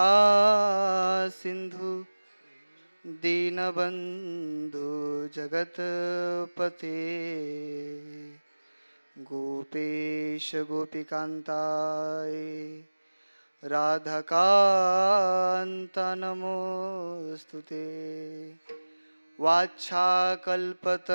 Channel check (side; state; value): both; inverted; correlation -1.00